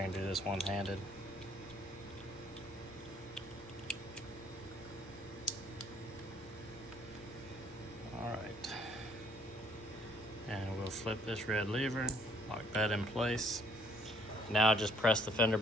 can do this one-handed. Alright. And we'll flip this red lever, lock that in place. Now just press the fender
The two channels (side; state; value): left; noise; rumble, 23 dB below the sound